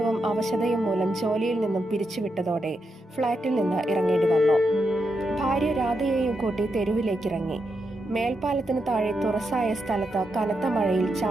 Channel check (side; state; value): both; normal; correlation 0.84